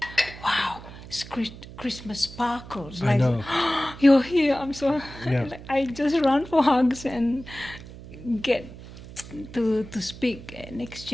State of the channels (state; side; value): noise; right; hum, 15 dB below the sound